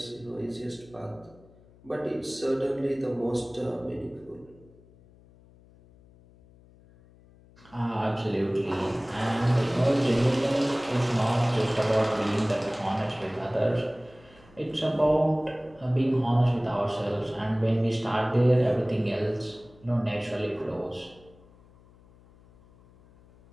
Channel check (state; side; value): noise; left; hum, 26 dB below the sound